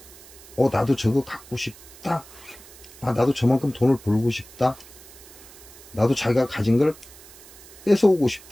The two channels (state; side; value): noise; right; hiss, 20 dB below the sound